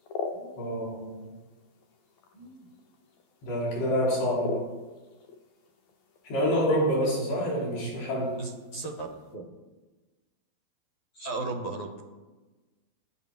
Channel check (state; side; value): late; right; 12 ms